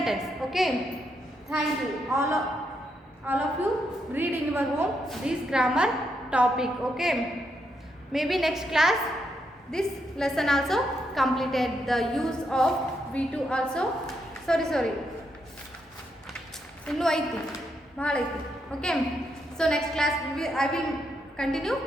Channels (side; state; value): both; normal; correlation 0.80